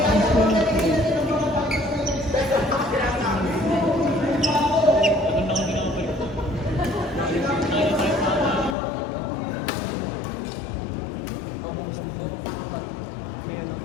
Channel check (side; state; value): right; drops out; at 8.8 s